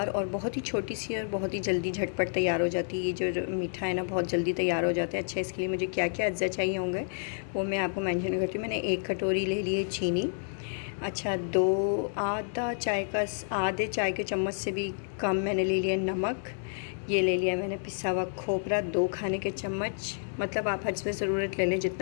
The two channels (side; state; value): right; silent; digital silence